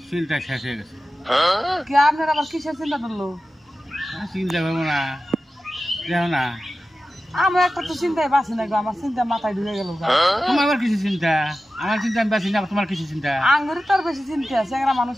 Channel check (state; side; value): normal; both; correlation 0.94